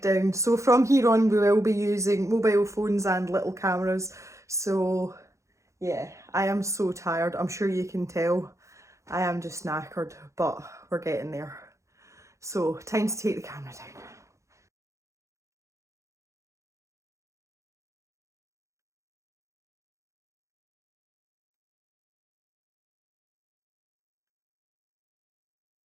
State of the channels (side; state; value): left; late; 0.15 ms